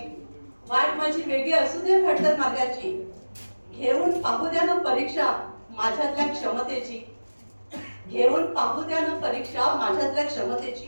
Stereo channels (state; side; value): inverted; both; correlation -1.00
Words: वाट माझी वेगळी असू द्या खडतर मार्गाची. घेऊन पाहू द्या ना परीक्षा माझ्यातल्या क्षमतेची, घेऊन पाहू द्या ना परीक्षा माझ्यातल्या